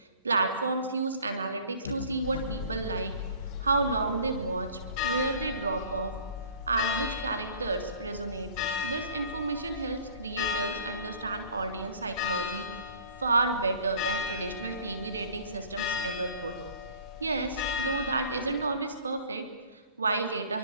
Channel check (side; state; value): both; inverted; correlation -0.49